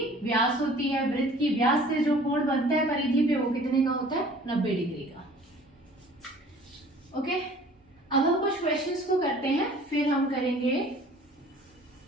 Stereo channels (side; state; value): both; normal; correlation 0.50